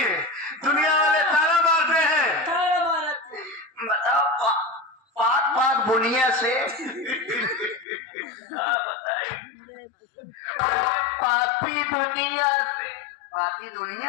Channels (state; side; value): drops out; right; at 7.9 s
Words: दुनिया वाले ताना मारते हैं। बताओ पाक पाक बुनिया से पापी दुनिया से पापी